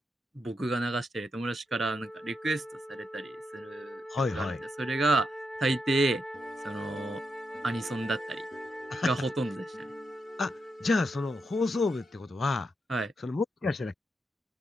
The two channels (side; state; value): both; normal; correlation 0.84